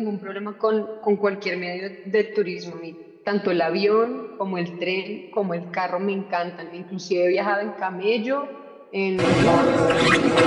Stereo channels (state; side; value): identical; both; correlation 1.00